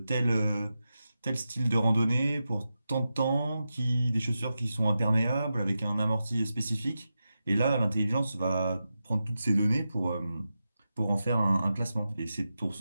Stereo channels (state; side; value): inverted; both; correlation -0.90